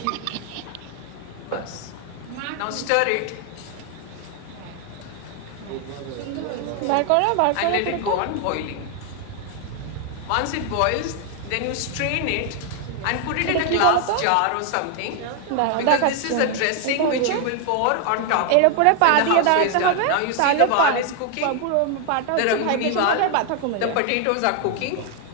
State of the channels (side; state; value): both; different; correlation 0.00